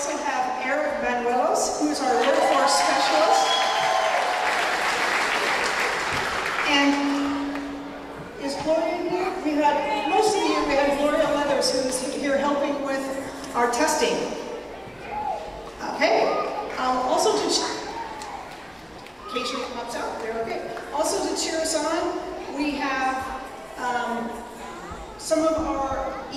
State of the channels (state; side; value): identical; both; correlation 1.00